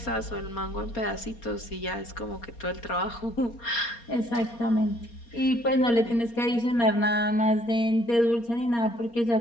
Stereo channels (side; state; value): right; late; 4.3 ms